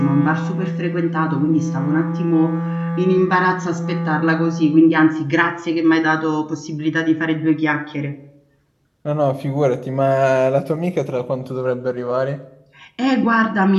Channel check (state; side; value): identical; both; correlation 1.00